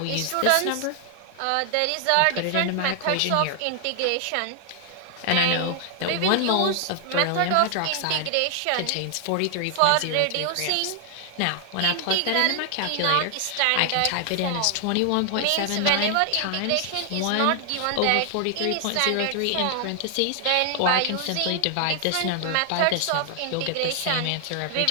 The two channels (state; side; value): different; both; correlation 0.00